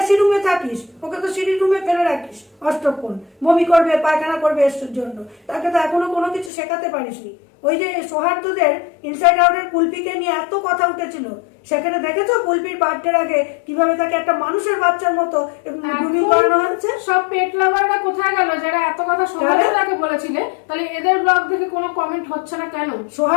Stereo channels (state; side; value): drops out; right; at 6.5 s